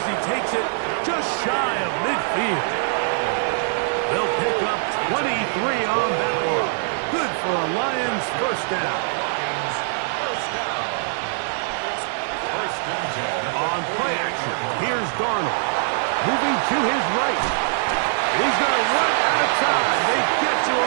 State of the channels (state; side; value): silent; left; digital silence